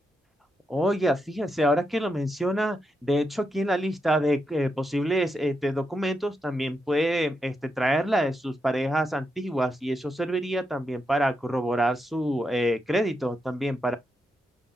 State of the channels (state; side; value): normal; both; correlation 0.84